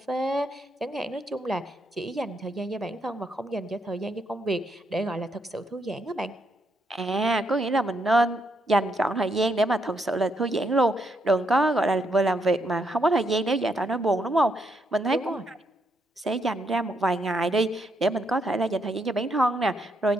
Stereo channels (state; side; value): normal; both; correlation 0.77